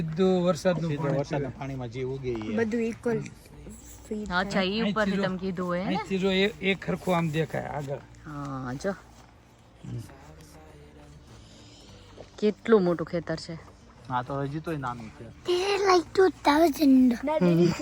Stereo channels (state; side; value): identical; both; correlation 1.00